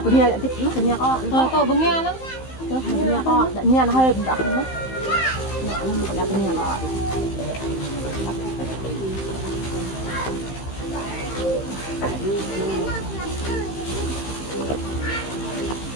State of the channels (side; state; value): right; late; 15 ms